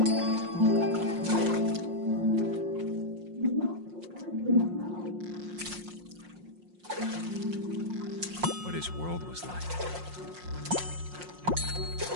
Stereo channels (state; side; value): late; left; 5.6 ms